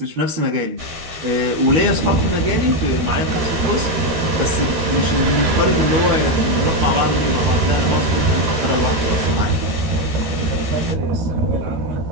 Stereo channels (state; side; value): late; left; 13 ms